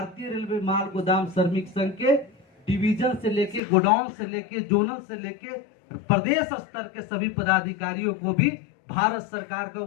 रेलवे माल गोदाम श्रमिक संघ के डिवीजन से लेके गोडाउन से लेके जोनल से लेके प्रदेश स्तर के सभी पदाधिकारियों को भी भारत सरकार का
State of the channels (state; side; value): drops out; right; at 3.6 s